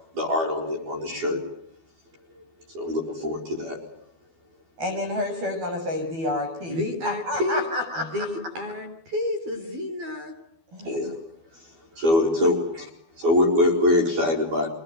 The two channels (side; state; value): left; late; 12 ms